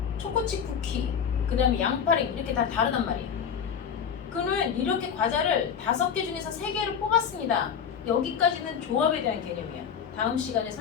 초코칩 쿠키, 그 다음에 양파링 이렇게 다 다르단 말이야. 그러면 이렇게 과자를 5개 중에서 3개를 뽑았습니다. 여기까지는 조합에 대한 개념이야. 다음 시간에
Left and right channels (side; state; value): right; quieter; 7.5 dB